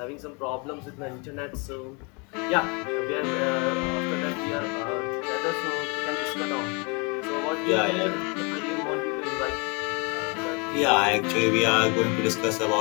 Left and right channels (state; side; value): quieter; right; 31.7 dB